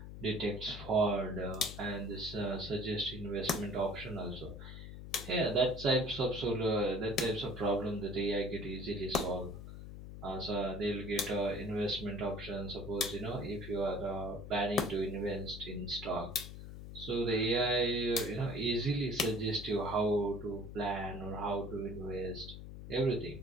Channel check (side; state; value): left; noise; hum, 11 dB below the sound